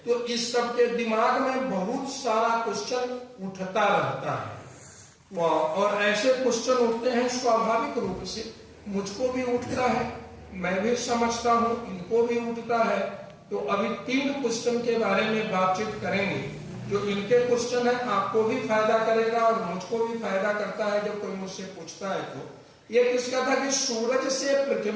तो इस सब के दिमाग में बहुत सारा क्वेश्चन उठता रहता है। और ऐसे क्वेश्चन उठते हैं स्वाभाविक रूप से, मुझको भी उठता है, मैं भी समझता हूँ, इनको भी उठता है। तो अभी 3 क्वेश्चन के बारे में बातचीत करेंगे। जो इनके क्वेश्चन है आपको भी फायदा करेगा और मुझको भी फायदा करता है जब कोई मुझसे पूछता है। तो ये किसका था कि सूरज से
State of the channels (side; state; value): both; identical; correlation 1.00